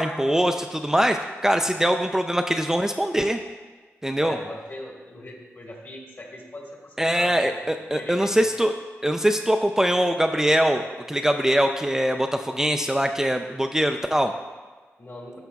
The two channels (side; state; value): both; normal; correlation 0.93